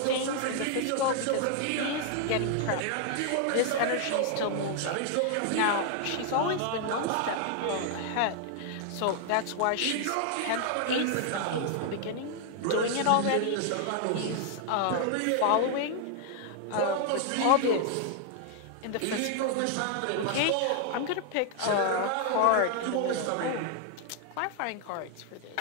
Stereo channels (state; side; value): different; both; correlation 0.00